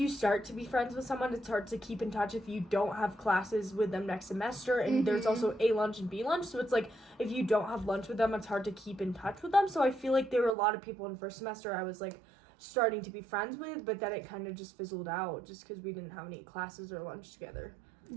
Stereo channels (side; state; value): left; drops out; at 10.6 s